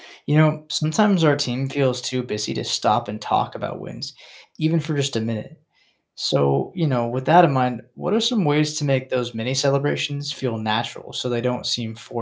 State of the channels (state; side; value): identical; both; correlation 1.00